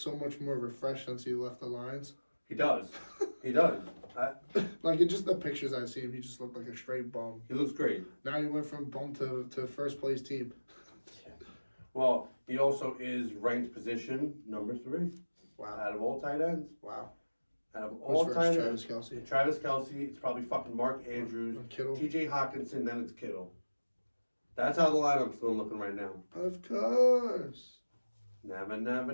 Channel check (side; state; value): both; inverted; correlation -1.00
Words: much more refreshed since he left the Lions? He does. He does. Like in just the pictures I've seen, he just looked like a straight bum. He looks great. Now he went from bum to first place team. Well, he also is ranked position number 3 Wow. out of all tight ends. Wow. Out of Who's all first? tight Travis ends. Kelce. Travis Kelce. It's probably fucking Mark Andrews. Kittle. T.J. Hawkinson. Then it's Kittle. That's how the lineup's still looking right now. Of course. Never,